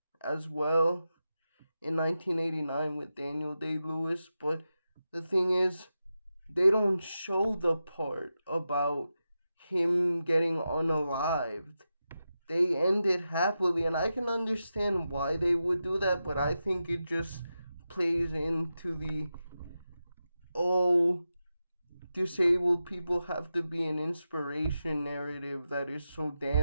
as well in 1989 with Daniel Day-Lewis, but the thing is, they don't show the part about him getting unalived. They end it happily, and I can understand why they would do that, but I think it just plays into the, oh, disabled people have to be an inspiration narrative that is so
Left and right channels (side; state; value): both; inverted; correlation -0.90